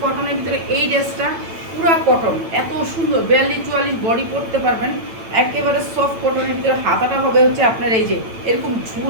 কটনের ভিতরে। এই ড্রেসটা পুরা কটন, এত সুন্দর, 42-44 বডি পরতে পারবেন। একেবারে সফট কটনের ভিতরে। হাতাটা হবে হচ্ছে আপনার এই যে এরকম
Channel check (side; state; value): left; late; 9.0 ms